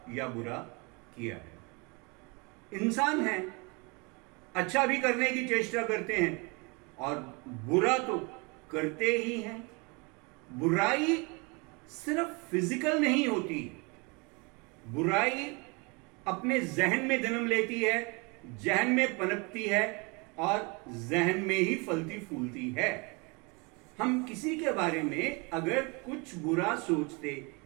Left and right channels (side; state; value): left; quieter; 29.6 dB